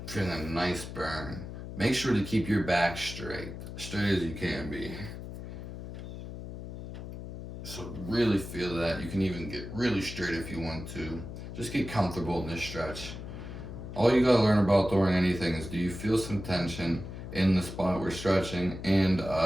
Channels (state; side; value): noise; left; hum, 10 dB below the sound